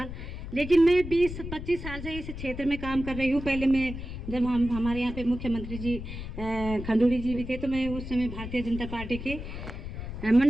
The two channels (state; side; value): noise; left; rumble, 8 dB below the sound